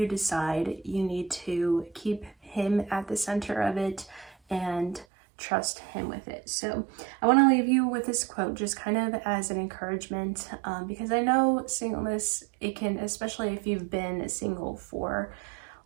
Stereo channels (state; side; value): drops out; left; at 5.1 s